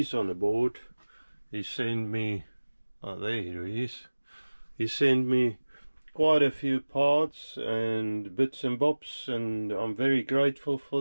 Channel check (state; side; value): inverted; both; correlation -1.00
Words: on the board. He sent me, oh, there he is. He sent me quite a few parts and bits and bobs, and I'm very grateful for